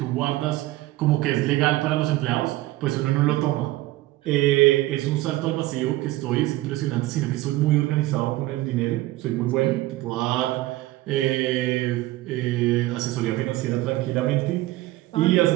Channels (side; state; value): left; quieter; 17.5 dB